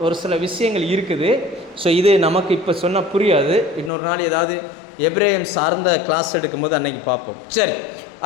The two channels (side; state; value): right; drops out; at 3.9 s